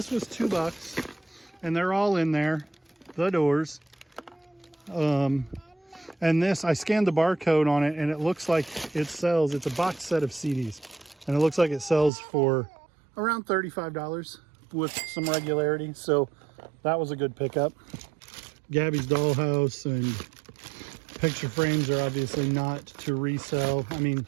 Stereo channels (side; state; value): left; drops out; at 12.1 s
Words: was $2 and they're all in there, the doors. And this, I scanned the barcode on it and it looks like it sells, it's a box set of CDs. And it looks like it sells for around $35 with some regularity. So that was a good pickup. Gabby's Dollhouse and picture frames are obviously not to resell. I mean,